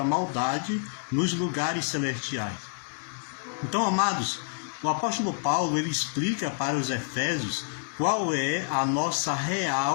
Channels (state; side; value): silent; right; 59 dB below the other